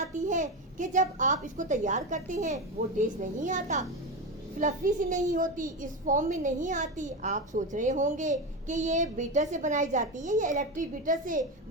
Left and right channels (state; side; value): normal; both; correlation 0.17